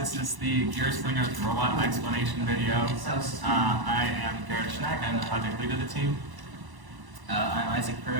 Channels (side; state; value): left; late; 1.0 ms